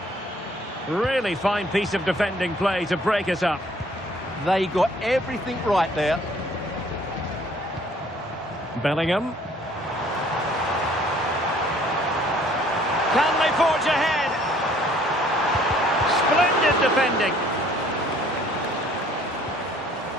Really fine piece of defending play to break us up. They got everything right there. Bellingham. Can they forge ahead? Splendid defending.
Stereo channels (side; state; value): both; normal; correlation 0.58